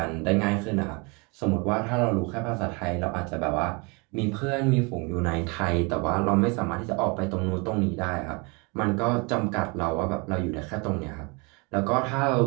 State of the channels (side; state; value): left; quieter; 29.8 dB